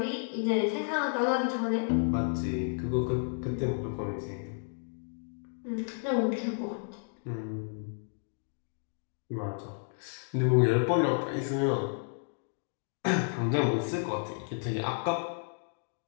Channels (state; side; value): silent; right; digital silence